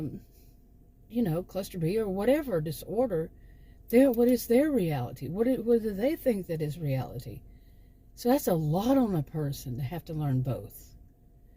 cluster B or whatever disorder, what is their reality? What do they think that is reality? So that's a lot on a person to have to learn both.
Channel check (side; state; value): both; identical; correlation 1.00